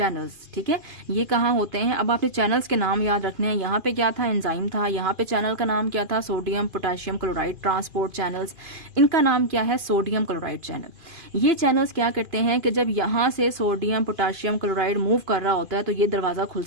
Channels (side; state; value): left; late; 2.5 ms